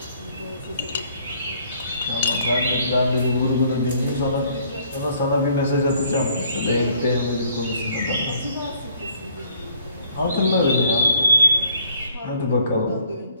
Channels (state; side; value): inverted; both; correlation -0.62